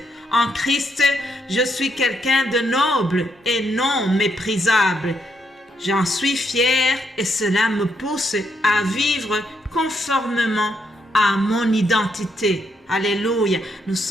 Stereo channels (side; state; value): both; normal; correlation 0.77